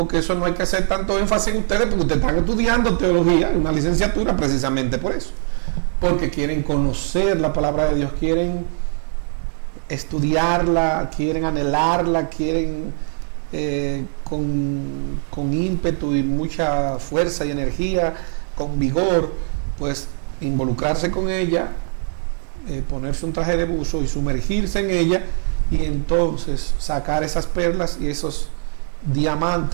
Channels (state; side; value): silent; left; 63 dB below the other